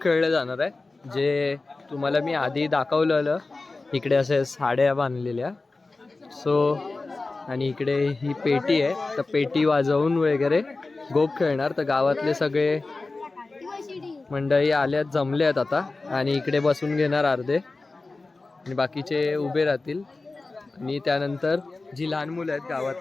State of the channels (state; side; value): quieter; right; 3.5 dB